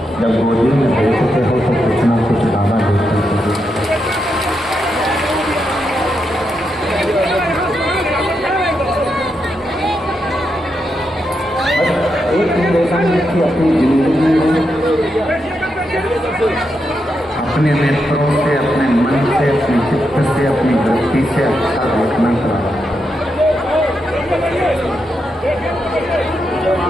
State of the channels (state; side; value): normal; both; correlation 0.83